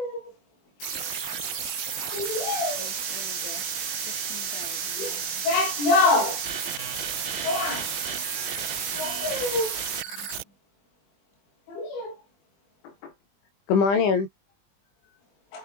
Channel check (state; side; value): late; right; 20 ms